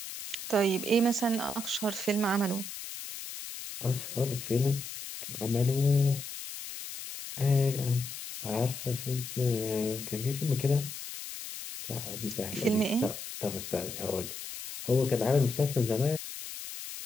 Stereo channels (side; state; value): left; noise; hiss, 9 dB below the sound